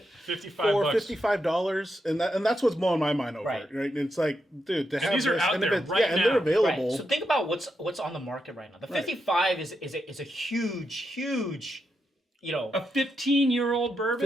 $55 for bucks. $55, and that's what's blowing my mind over. Right. Right? And it's like, dude, to have these are this, out and there if it's, right and now. they're available. Right. So think about what's on the market right now. The 55 is a huge, you know. A 15-year-old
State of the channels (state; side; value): normal; both; correlation 0.84